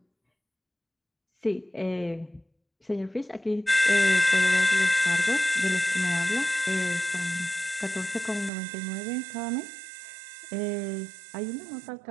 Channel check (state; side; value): drops out; left; at 8.5 s